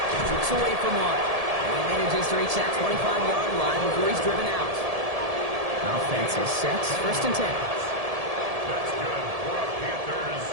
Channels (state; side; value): late; left; 1.7 ms